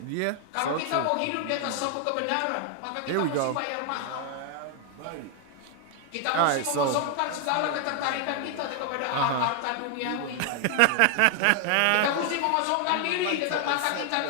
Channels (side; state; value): both; different; correlation 0.00